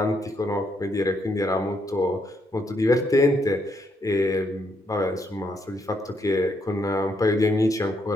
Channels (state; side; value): normal; both; correlation 0.75